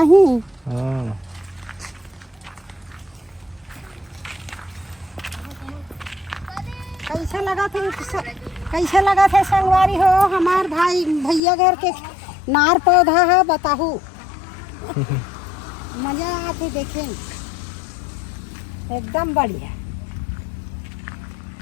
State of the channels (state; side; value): drops out; right; at 11.4 s